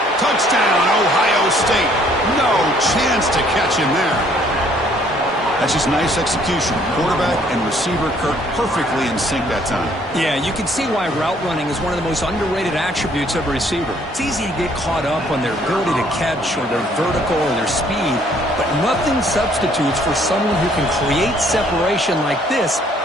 Touchdown, Ohio State. No chance to catch him there. That's just nice execution. Quarterback and receiver, Kirk, perfectly in sync that time. Yeah, you can see why route running is one of the most underrated attributes of a receiver. It's easy to get caught up on their ability to catch or their vertical or their speed, but nothing substitutes for someone who can create separation like this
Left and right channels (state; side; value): normal; both; correlation 0.62